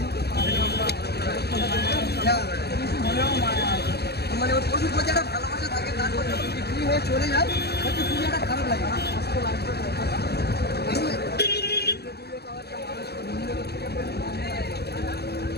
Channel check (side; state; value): right; late; 0.47 ms